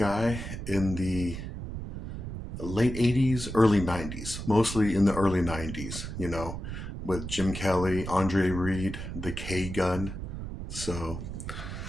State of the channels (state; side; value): noise; right; rumble, 7 dB below the sound